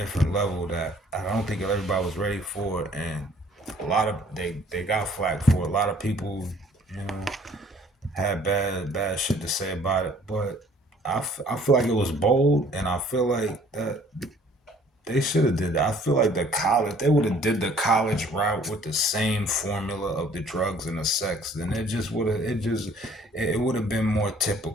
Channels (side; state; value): both; normal; correlation 0.57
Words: level that I don't think everybody was ready for, and a lot of they got flack for it. A lot of people, you know, had bad shit to say about it, but I feel like it was bold, and I feel like that they should have did that. I feel like the college they would have did the college route with the same formula of the drugs and the sex, then it would have been more